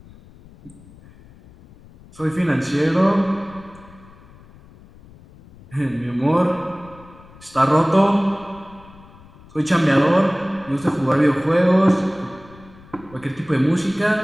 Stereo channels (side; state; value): left; noise; rumble, 23 dB below the sound